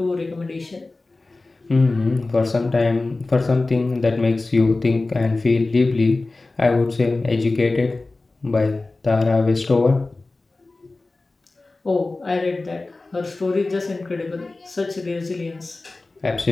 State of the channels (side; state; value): right; quieter; 3.3 dB